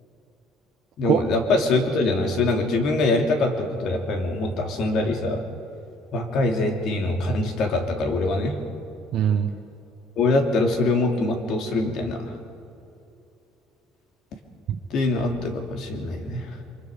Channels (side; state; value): both; normal; correlation 0.58